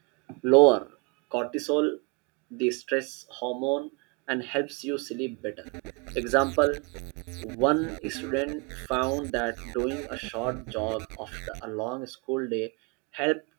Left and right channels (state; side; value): quieter; left; 31.1 dB